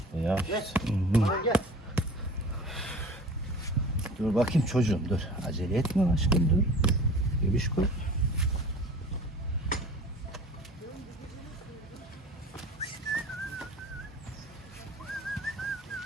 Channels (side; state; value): both; normal; correlation 0.42